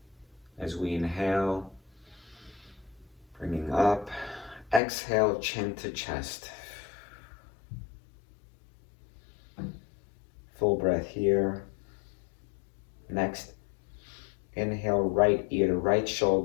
As we inhale, bringing up. Exhale, chin to chest. Full breath here. Next, inhale, right ear to right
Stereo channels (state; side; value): drops out; right; at 4.8 s